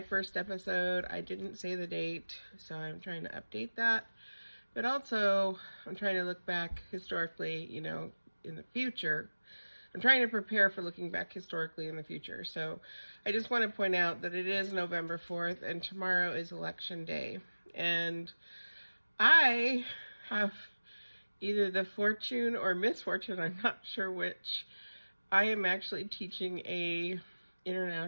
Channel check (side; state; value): both; inverted; correlation -1.00